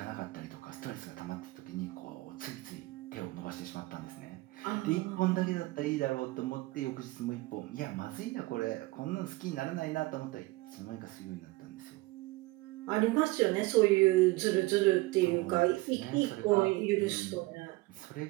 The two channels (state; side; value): quieter; left; 21.5 dB